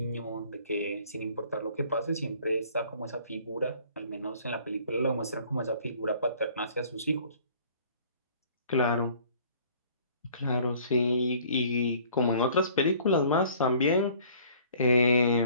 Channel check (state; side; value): inverted; both; correlation -0.55